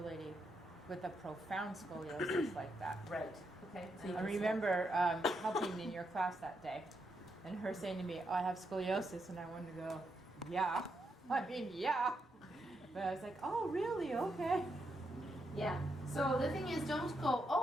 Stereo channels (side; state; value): both; normal; correlation 0.81